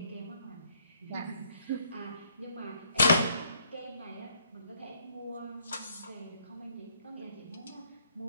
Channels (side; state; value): both; inverted; correlation -0.68